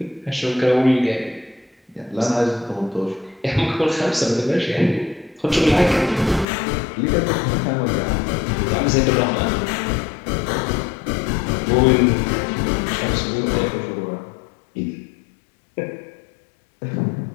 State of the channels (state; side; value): drops out; right; at 6.5 s